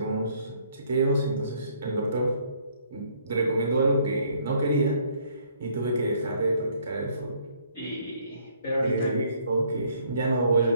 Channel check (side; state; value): both; inverted; correlation -0.64